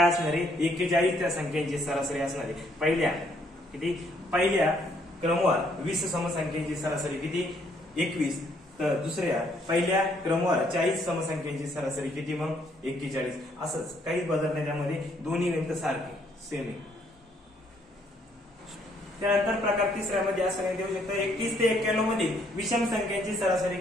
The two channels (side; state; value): both; normal; correlation 0.68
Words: असणार आहे, 41 त्या संख्यांची सरासरी असणार आहे। पहिल्या क्रमावर 20 समसंख्यांची सरासरी किती 21, तर दुसऱ्या पहिल्या क्रमावर 40 समसंख्यांची सरासरी किती मग 41। असंच काही बदल नाही त्यामध्ये, दोन्ही गणित सारखे सेम आहे। त्यानंतर प्रकार तिसऱ्यामध्ये असं नाही देऊ शकतं, 31 ते 91 मध्ये विषम संख्यांची सरासरी